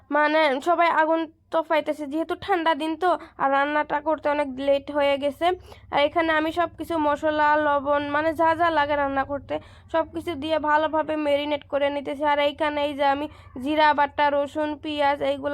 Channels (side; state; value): both; identical; correlation 1.00